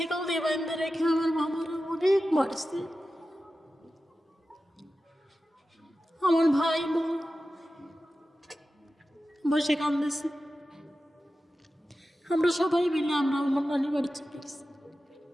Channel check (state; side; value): normal; both; correlation 0.93